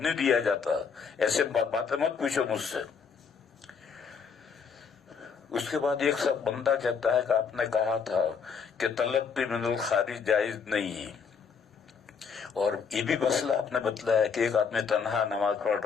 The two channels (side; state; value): right; quieter; 6.1 dB